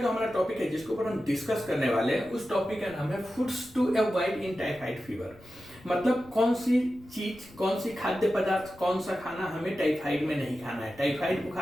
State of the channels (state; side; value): noise; left; rumble, 23 dB below the sound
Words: हमारा टॉपिक है जिसके ऊपर हम डिस्कस करने वाले हैं उस टॉपिक का नाम है foods to avoid in typhoid fever. मतलब कौन सी चीज, कौन सी खाद्य पदार्थ, कौन सा खाना हमें टाइफाइड में नहीं खाना है। टाइफाइड